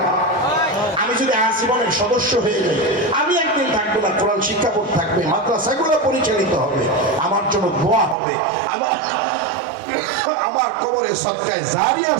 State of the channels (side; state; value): left; drops out; at 8.2 s